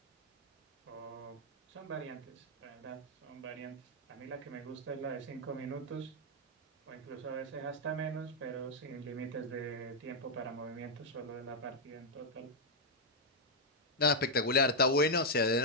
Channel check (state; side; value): normal; both; correlation -0.03